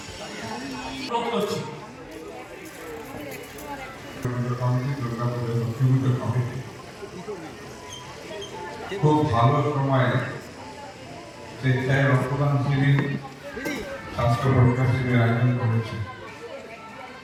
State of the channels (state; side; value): identical; both; correlation 1.00